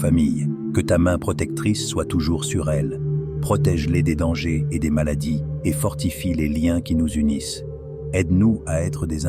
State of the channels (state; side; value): identical; both; correlation 1.00